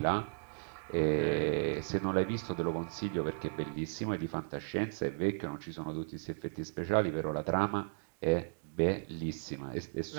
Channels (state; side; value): silent; left; digital silence